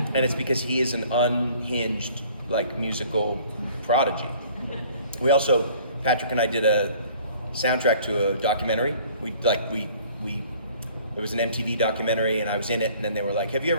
And it's because he is an unhinged, like, musical prodigy. We also, Patrick and I did a soundtrack to a documentary. It was an MTV documentary, and I was in it, and then they were like, have you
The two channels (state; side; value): inverted; both; correlation -0.53